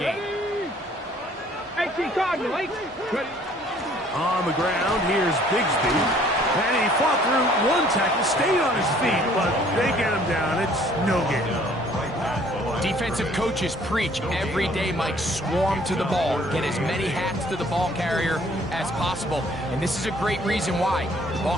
On the ground, here's Bigsby. And he fought through one tackle, stayed on his feet, but they get him down. It's no gain. Defensive coaches preach every day, Mike, swarm to the ball. Get as many hats to the ball carrier as possible. And this is a great reason why. The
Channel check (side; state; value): both; normal; correlation 0.58